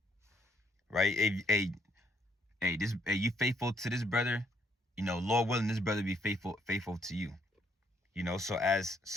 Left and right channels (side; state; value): both; normal; correlation 0.70